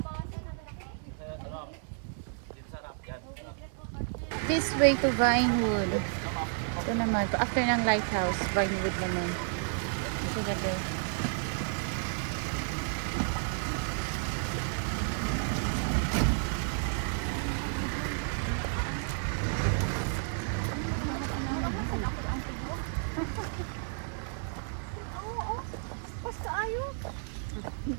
This way to Vinewood. Ito naman, after ng lighthouse, Vinewood naman. Ito gabi.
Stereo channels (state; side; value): silent; left; 57 dB below the other